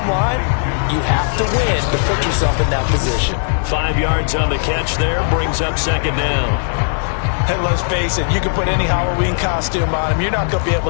line, you have to win to put yourself in that position. 5 yards on the catch there, brings up second down. And let's face it, you can put any Halloween costume on him. You're not going to be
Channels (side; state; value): right; silent; digital silence